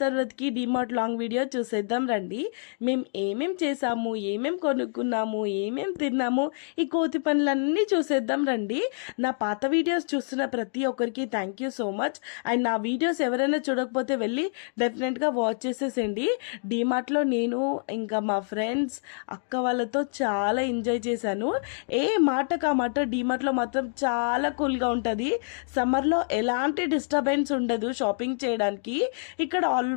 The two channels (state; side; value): silent; right; digital silence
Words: తర్వాతకి DMart long video చూసేద్దాం రండి. మేము ఏమేం చేసాము, ఏమేం కొనుక్కున్నాము, ఏమేం తిన్నాము, ఈ కోతి పనులన్నీ చూసేద్దాం రండి. నా పాత వీడియోస్ చూస్తున్న ప్రతి ఒక్కరికి thank you so much. And నా వీడియోస్ ఎవరైనా చూడకపోతే వెళ్ళి డెఫినెట్గా వాచ్ చేసేసండి. డిమార్ట్లో నేను ఇంకా మా ఫ్రెండ్స్ అక్క వాళ్ళతో చాలా ఎంజాయ్ చేశాను. ఏ మాటకు ఆ మాట డీమార్ట్లో మాత్రం చాలా కూల్గా ఉంటుంది. సమ్మర్లో ఎలాంటి డిస్టర్బెన్స్ ఉండదు షాపింగ్ చేయడానికి. ఇక్కడ